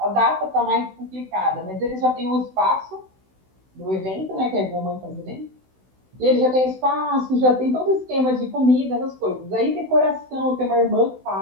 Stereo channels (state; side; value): late; left; 16 ms